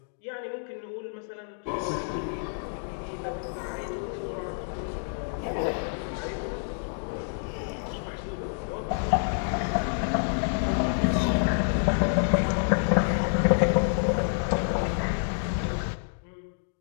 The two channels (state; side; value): silent; right; digital silence